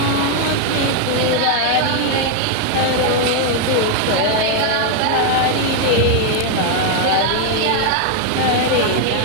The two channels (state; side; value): different; both; correlation 0.00